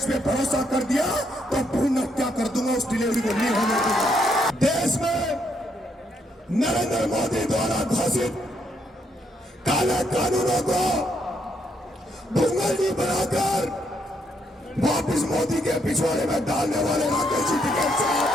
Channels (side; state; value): both; normal; correlation 0.75